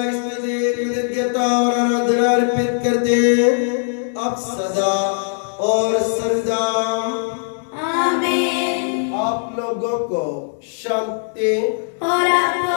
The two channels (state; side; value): silent; right; digital silence